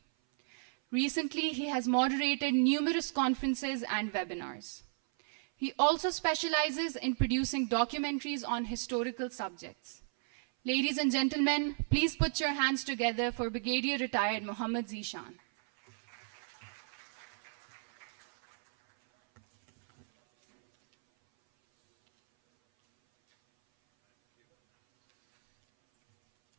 Recently, he has moderated numerous conferences and webinars. He also specializes in producing documentaries on historical subjects. Ladies and gentlemen, please put your hands together for Brigadier Retired Mohammad Zishan.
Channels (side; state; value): left; silent; 55 dB below the other